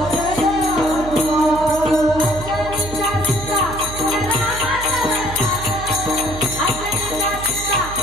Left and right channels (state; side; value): noise; right; hum, 11 dB below the sound